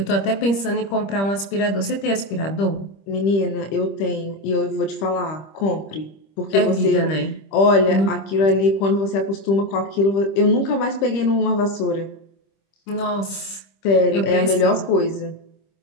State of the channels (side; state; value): right; late; 25 ms